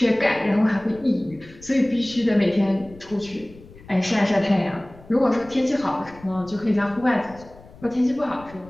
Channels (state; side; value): noise; left; rumble, 21 dB below the sound